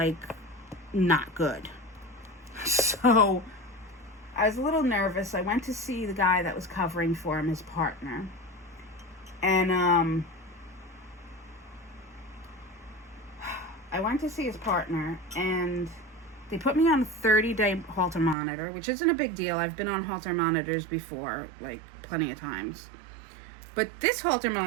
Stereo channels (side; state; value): left; drops out; at 18.4 s